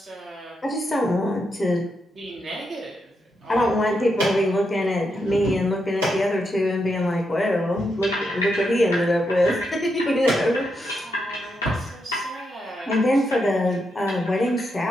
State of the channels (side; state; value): both; normal; correlation 0.83